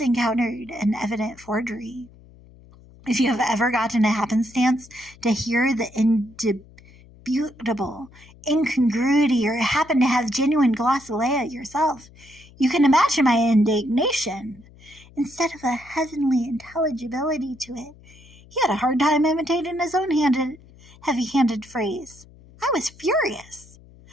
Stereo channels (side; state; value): left; noise; hum, 24 dB below the sound